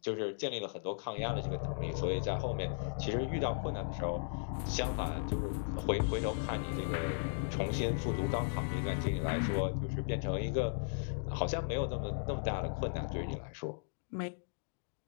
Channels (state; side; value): silent; right; digital silence